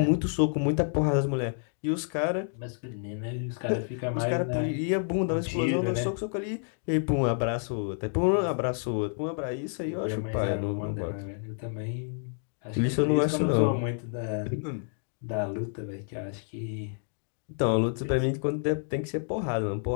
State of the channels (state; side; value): silent; right; digital silence